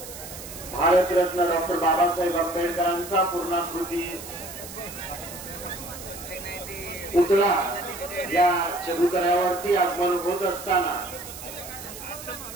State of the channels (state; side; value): noise; right; hiss, 12 dB below the sound